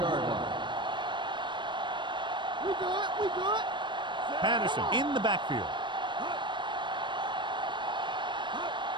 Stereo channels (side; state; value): left; late; 0.23 ms